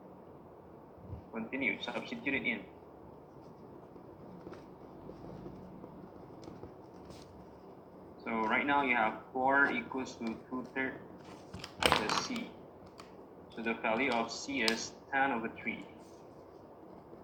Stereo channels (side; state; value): both; identical; correlation 1.00